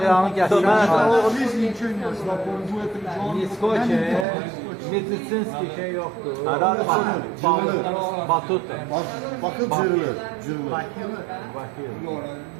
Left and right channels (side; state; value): left; drops out; at 4.2 s